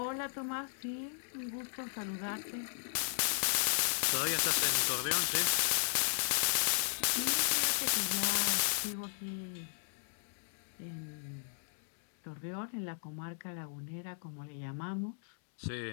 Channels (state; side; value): silent; right; digital silence